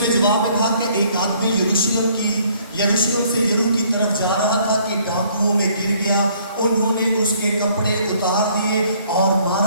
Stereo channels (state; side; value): inverted; both; correlation -0.61